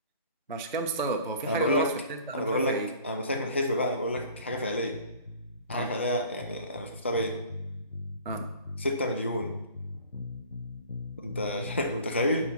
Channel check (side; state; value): both; inverted; correlation -0.47